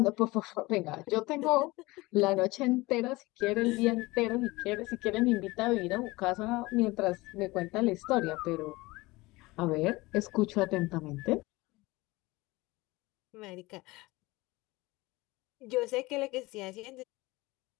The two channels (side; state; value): right; quieter; 21.6 dB